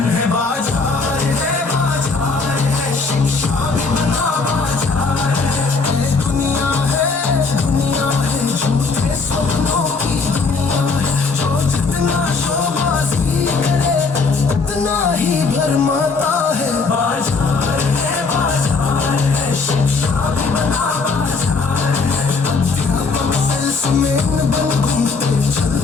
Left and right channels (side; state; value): right; quieter; 4.3 dB